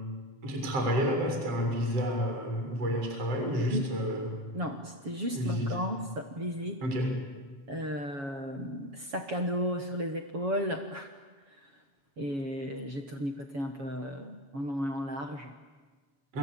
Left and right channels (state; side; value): late; left; 7.2 ms